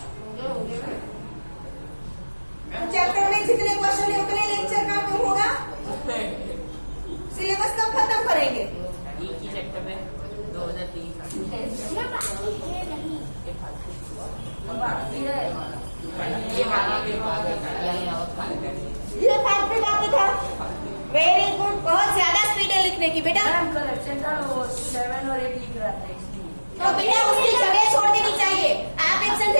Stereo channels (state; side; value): inverted; both; correlation -1.00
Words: चैप्टर में जितने क्वेश्चन है उतने लेक्चर का क्यों होगा? सिलेबस कब खत्म करेंगे? एक ही चैप्टर में 2030 ये पार्ट भी बाकी था। वेरी गुड, बहुत ज्यादा स्पीड है लिखने की बेटा। 7 और 8 लिख रहा था इसलिए। तो बेटा उसकी जगह छोड़ देनी चाहिए। आप एब्सेंट